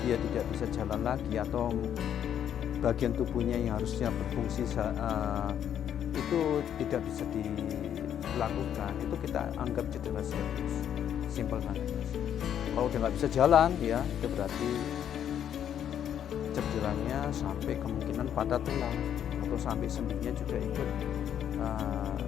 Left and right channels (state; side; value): quieter; right; 9.6 dB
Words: dia tidak bisa jalan lagi atau bagian tubuhnya yang harusnya berfungsi itu tidak bisa dilakukan, itu kita anggap cedera serius, simpel banget. Kalau dia nggak bisa jalan, ya itu berarti cederanya sampai kemungkinan patah tulang atau sampai sendinya juga ikut